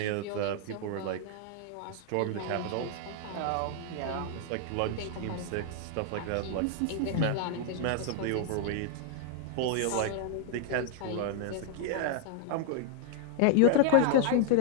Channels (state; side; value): different; both; correlation 0.00